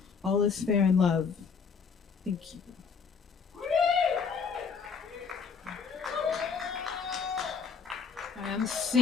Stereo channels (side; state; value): right; quieter; 5.8 dB